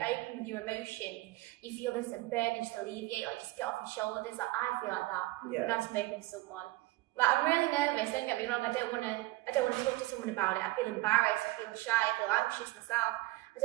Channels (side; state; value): left; quieter; 19.4 dB